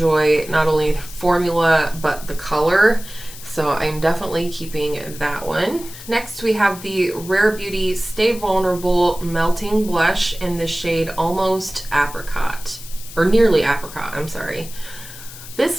not only the formula but the color, so I'm definitely keeping that one. Next, we have the Rare Beauty Stay Vulnerable Melting Blush in the shade Almost Apricot, or Nearly Apricot, I'm sorry.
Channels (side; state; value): left; noise; hiss, 15 dB below the sound